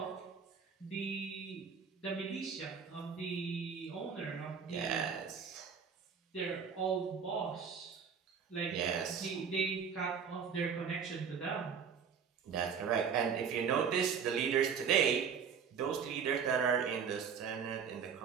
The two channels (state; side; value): quieter; left; 6.7 dB